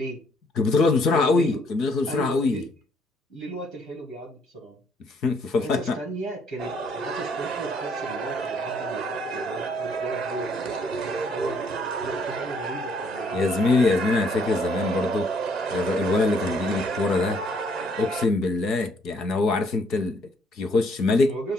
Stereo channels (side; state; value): both; normal; correlation 0.67